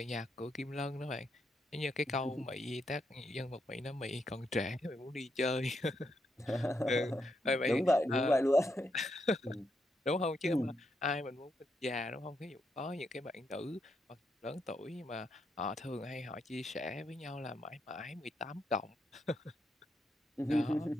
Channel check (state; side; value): normal; both; correlation 0.80